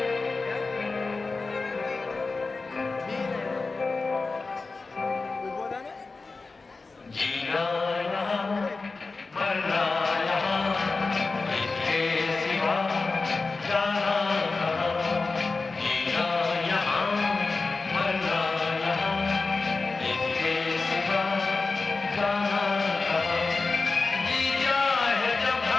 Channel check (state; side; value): quieter; right; 3.9 dB